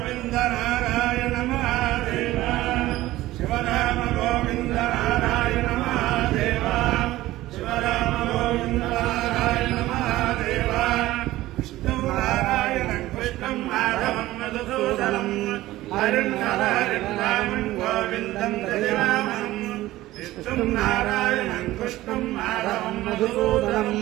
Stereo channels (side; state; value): left; quieter; 16.4 dB